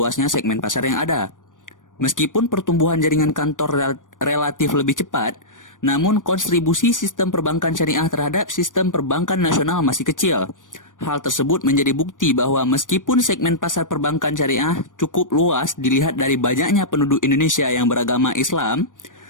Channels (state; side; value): late; right; 0.88 ms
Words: segmen pasar yang ada. Meskipun pertumbuhan jaringan kantor relatif lebih cepat, namun kontribusi sistem perbankan syariah terhadap sistem perbankan nasional masih kecil. Hal tersebut menjadi bukti bahwa meskipun segmen pasar perbankan syariah cukup luas dilihat dari banyaknya penduduk Indonesia yang beragama Islam,